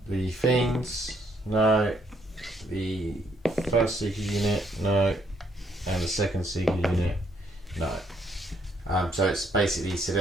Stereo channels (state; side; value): normal; both; correlation 0.70